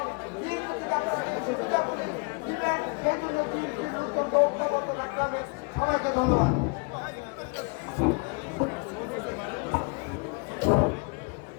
বিএনপি থেকে আপনারা সুবিধাগুলি দিবেন, সেই জন্য বিএনপির নতুন ঐক্যবদ্ধ রাখতে হবে। সবাইকে ধন্যবাদ।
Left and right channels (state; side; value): quieter; right; 32.3 dB